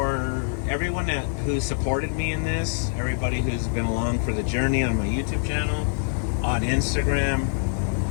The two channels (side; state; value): right; silent; digital silence